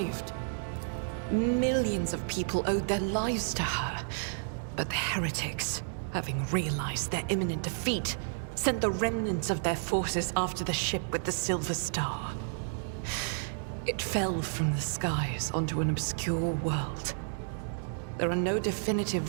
Millions of people owed their lives to her, but the heretics, having realized their imminent defeat, sent the remnants of their forces after the ship with the Silver Star. It fell from the skies onto an obscure world. There are no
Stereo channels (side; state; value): left; silent; digital silence